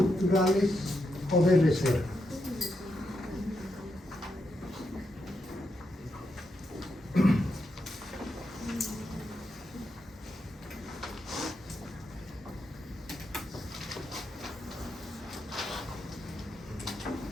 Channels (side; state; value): both; normal; correlation 0.83